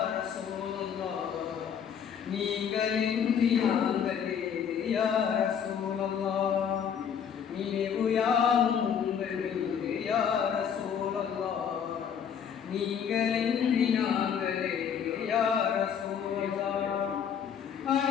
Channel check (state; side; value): quieter; right; 7.8 dB